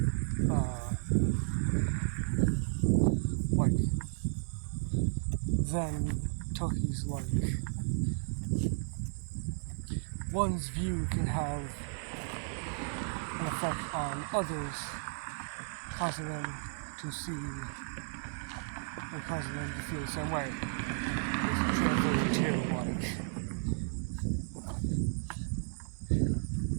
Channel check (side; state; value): left; silent; 55 dB below the other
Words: like, then Tucky's like, one's view can have an effect on others, causing them to see, and causing them to feel the same way. It's translated to, like,